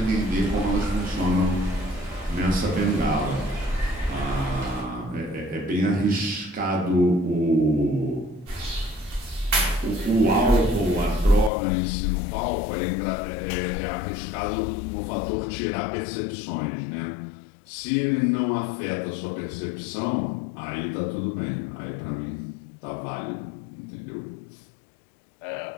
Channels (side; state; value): right; drops out; at 11.5 s